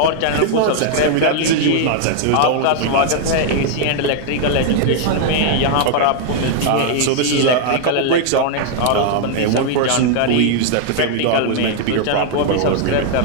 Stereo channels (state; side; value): different; both; correlation 0.00